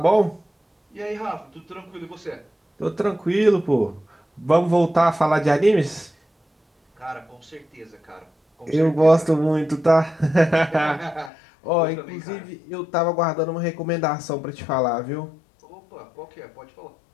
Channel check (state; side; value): drops out; right; at 11.3 s